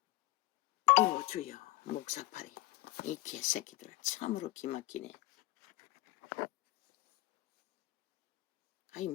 때문에. 주여 목사파리 이 개새끼들 참으로 기막히네. 아니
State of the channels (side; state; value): right; quieter; 18.3 dB